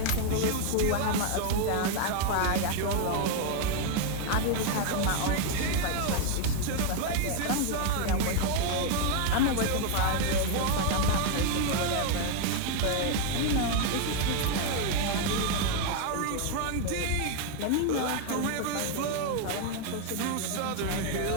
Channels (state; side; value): different; both; correlation 0.01